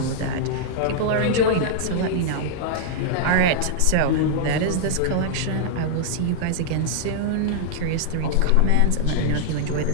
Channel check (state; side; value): different; both; correlation -0.01